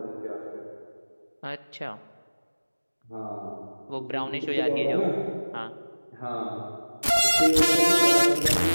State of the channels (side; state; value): both; inverted; correlation -1.00